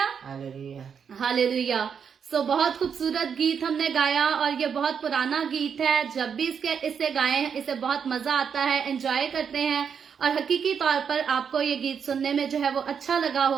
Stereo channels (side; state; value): left; quieter; 7.0 dB